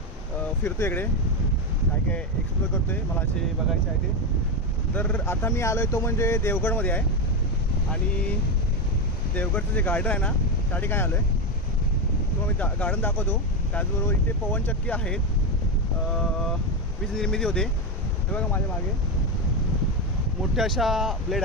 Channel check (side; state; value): both; normal; correlation 0.11